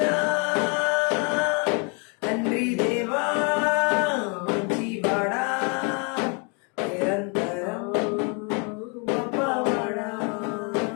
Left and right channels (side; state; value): right; quieter; 35.2 dB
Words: తండ్రి దేవా మంచి బాడా నిరంతరం గొప్పవాడా